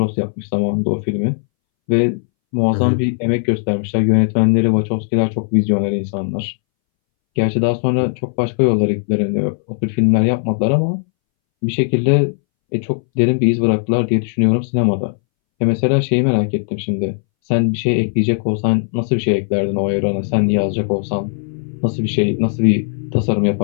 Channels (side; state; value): right; silent; 65 dB below the other